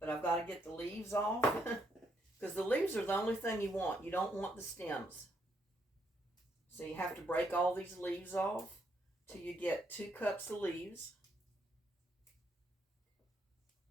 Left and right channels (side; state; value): both; normal; correlation 0.75